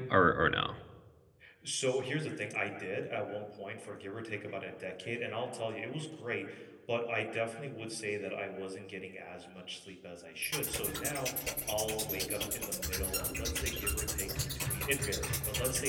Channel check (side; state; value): both; identical; correlation 1.00